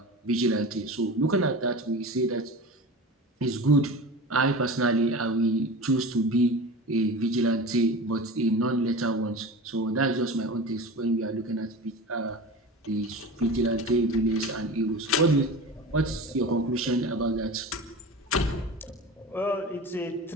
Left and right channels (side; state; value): both; normal; correlation 0.32